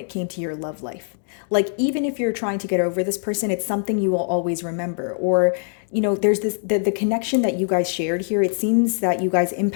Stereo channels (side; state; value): right; silent; 55 dB below the other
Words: came to your love life. Like, even if you're trying to get over this person, it's something you will always remember. Or, there's the connection that you guys shared here. It seems that you guys